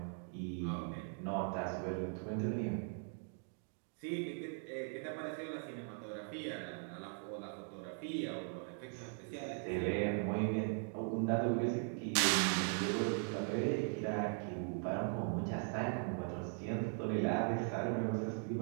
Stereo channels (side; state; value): left; silent; 51 dB below the other